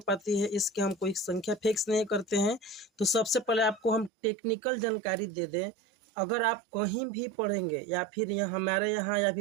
है। इसके हम कोई संख्या फिक्स नहीं करते हैं। तो सबसे पहले आपको हम टेक्निकल जानकारी दे दें। अगर आप कहीं भी पढ़ेंगे या फिर यहाँ हमारे यहाँ या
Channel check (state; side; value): drops out; left; at 4.1 s